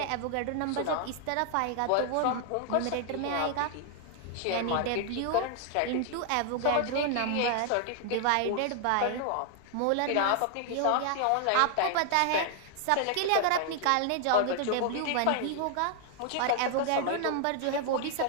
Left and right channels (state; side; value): different; both; correlation 0.00